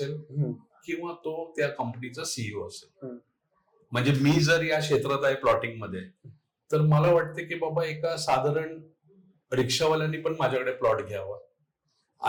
किंवा तो त्या कंपनीचा CEO असेल. म्हणजे मी जर या क्षेत्रात आहे प्लॉटिंग मध्ये तर मला वाटते की बाबा एका साधारण रिक्षावाल्यांनी पण माझ्याकडे प्लॉट घ्यावा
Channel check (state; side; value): identical; both; correlation 1.00